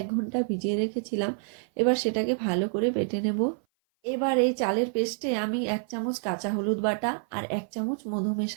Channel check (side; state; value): left; silent; 55 dB below the other